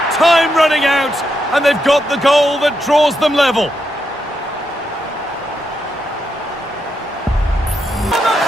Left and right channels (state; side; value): normal; both; correlation 0.82